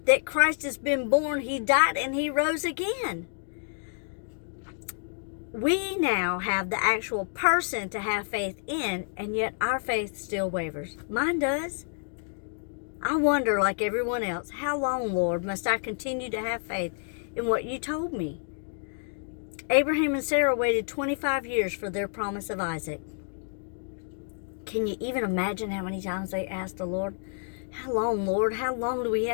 that Christ has been born, he died, and he rose again? We now have the actual person to have faith in, and yet our faith still wavers. Mine does. I wonder, like everyone else, how long, Lord, must I continue to have faith in what you told me? Abraham and Sarah waited 25 years for their promise of Isaac. Can you even imagine how many times they asked the Lord, how long, Lord? How long do we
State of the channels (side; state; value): right; silent; digital silence